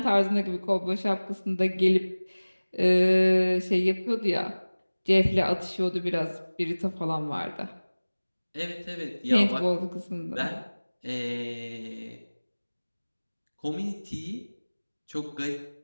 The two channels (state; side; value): inverted; both; correlation -1.00